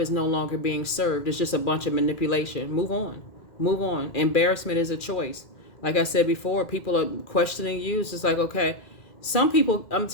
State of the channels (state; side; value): late; right; 2.4 ms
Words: is no longer being served? It's just a bunch of manipulation. Move on. Move on. Embarrassment is a choice. Like I said before, people are questioning you. It's just like, okay, some people, I'm